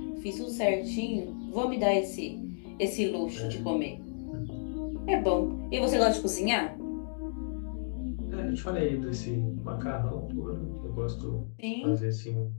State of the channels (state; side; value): silent; right; digital silence